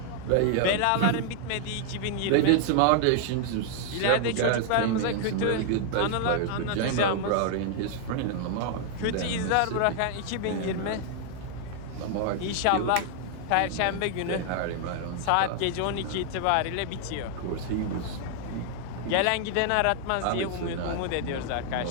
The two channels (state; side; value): different; both; correlation 0.00